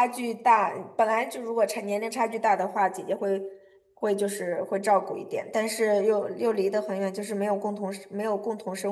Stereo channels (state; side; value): identical; both; correlation 1.00